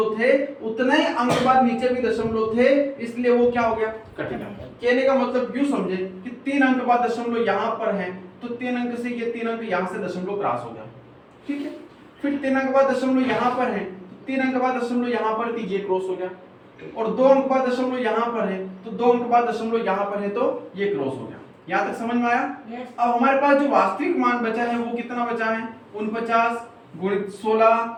थे उतने ही अंक बाद नीचे भी दशमलव थे, इसलिए वो क्या हो गया? कट गया। कहने का मतलब यूं समझे कि 3 अंक बाद दशमलव यहाँ पर है, तो 3 अंक से ये 3 अंक यहाँ से दशमलव क्रॉस हो गया, ठीक है। फिर 3 अंक बाद दशमलव यहाँ पर है, 3 अंक बाद दशमलव यहाँ पर, तो ये क्रॉस हो गया, और 2 अंक बाद दशमलव यहाँ पर है, तो 2 अंक बाद दशमलव यहाँ पर है, तो ये क्रॉस हो गया। यहाँ तक समझ में आया? Yes. अब हमारे पास जो वास्तविक मान बचा है वो कितना बचा है? 49 गुणित 16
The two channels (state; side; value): identical; both; correlation 1.00